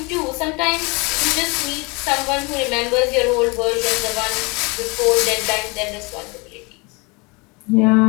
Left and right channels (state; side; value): quieter; right; 28.3 dB